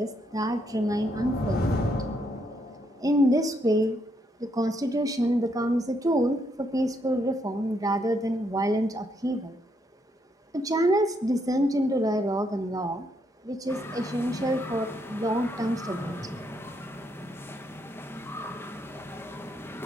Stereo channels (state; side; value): normal; both; correlation 0.75